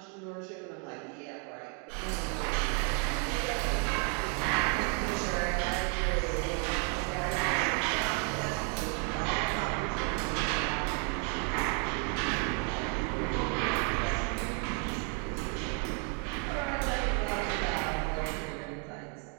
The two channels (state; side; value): quieter; left; 39.2 dB